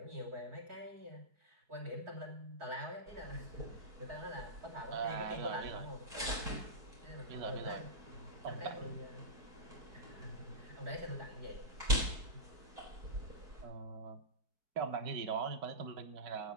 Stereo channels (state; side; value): late; left; 4.6 ms